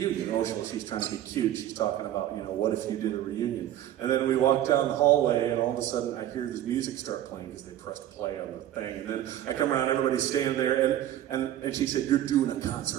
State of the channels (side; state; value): left; quieter; 12.3 dB